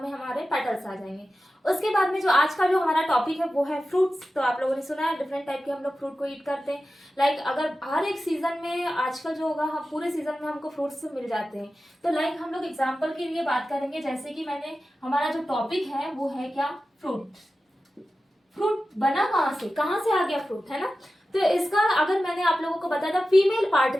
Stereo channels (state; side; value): normal; both; correlation 0.94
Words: में हमारे पेटल्स आ जाएंगे। उसके बाद में जो आज का जो हमारा टॉपिक है वो है फ्रूट्स। तो आप लोगों ने सुना है डिफरेंट टाइप के हम लोग फ्रूट को ईट करते हैं। लाइक अगर हर एक सीजन में आजकल जो होगा, हम पूरे सीजन में हमको फ्रूट्स मिल जाते हैं। तो लाइक हम लोग एग्जांपल के लिए बात करेंगे, जैसे कि मैंने हमारा जो टॉपिक है वो है क्या? फ्रूट। फ्रूट बना कहाँ से आ गया फ्रूट, है ना? तो इसका अगर मैंने आप लोगों को बताया था फीमेल